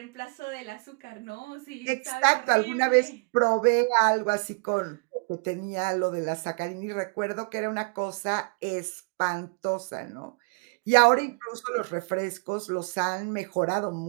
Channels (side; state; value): left; quieter; 32.9 dB